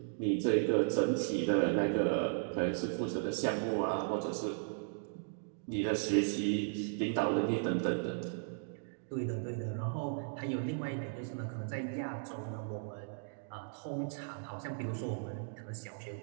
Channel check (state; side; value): silent; left; digital silence